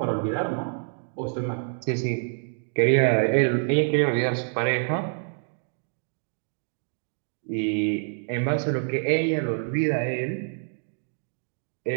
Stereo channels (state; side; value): silent; left; 60 dB below the other